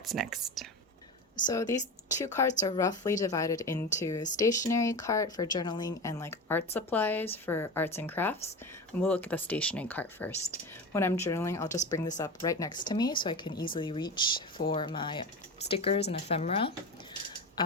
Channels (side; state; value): both; normal; correlation 0.26